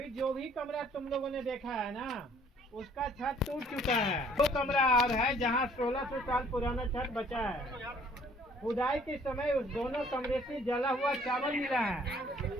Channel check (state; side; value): normal; both; correlation 0.59